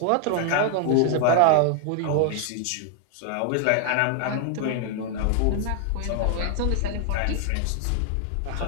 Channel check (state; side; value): different; both; correlation 0.00